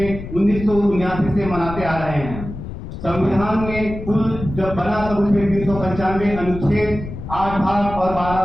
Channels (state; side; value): noise; left; rumble, 9 dB below the sound